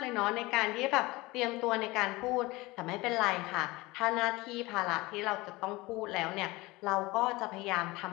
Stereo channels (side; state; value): right; quieter; 21.5 dB